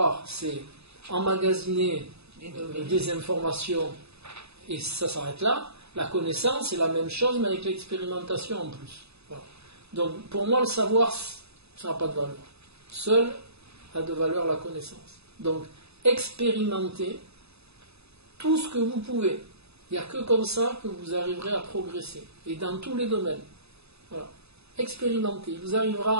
c'est emmagasiner des informations et ça s'arrête là. La connaissance, c'est la même chose, mais avec l'expérimentation en plus. Voilà. Donc, pour moi, le savoir, ça n'a pas de valeur. Seul a de valeur la connaissance. Donc, expérimentez tout ce que vous pouvez. Il n'y a que comme ça que vous arriverez à progresser. Et dans tous les domaines. Voilà. Expérimentez. Il vous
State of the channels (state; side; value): late; left; 0.79 ms